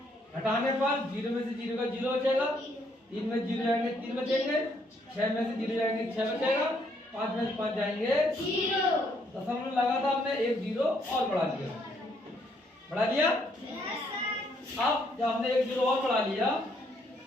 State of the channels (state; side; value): normal; both; correlation 0.70